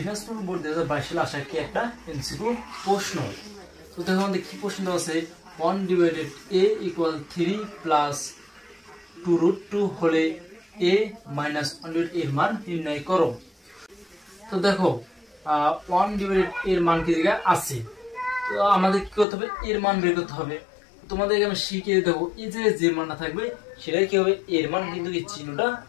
বোর্ড 2022 সালে আসা কি একটা এমসিকিউ প্রশ্ন। তো দেখো আমাদের কি প্রশ্ন আছে, 1/a = 3 + 2√2 হলে a - 1/a এর মান নির্ণয় করো। তো দেখো 1/a এর মান কি জায়গায় আছে, তো আমাদের কি করতে হবে, এর মান বের করতে হবে। তোমাদেরকে আমি শিখিয়ে দেবো, এই যে মানটা থাকবে সেটাই কি হবে এর মান, কিন্তু এই চিহ্নটা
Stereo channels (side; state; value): right; drops out; at 19.2 s